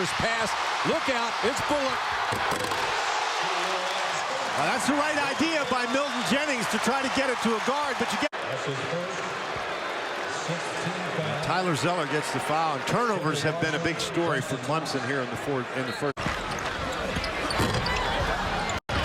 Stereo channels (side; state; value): both; identical; correlation 1.00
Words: pass. Look out, it's Bullock. Well, that's the right idea by Milton Jennings to try to get it to a guard, but you get... Tyler Zeller gets the foul, and turnovers have been a big story for Clemson here in the first.